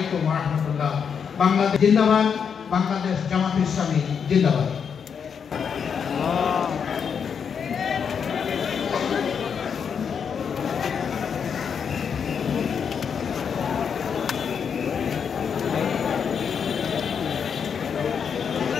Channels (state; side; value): quieter; right; 6.9 dB